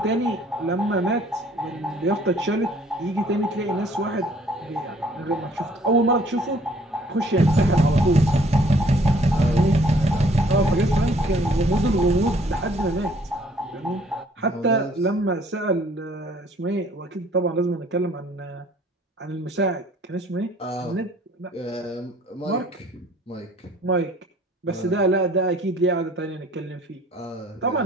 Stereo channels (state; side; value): normal; both; correlation 0.58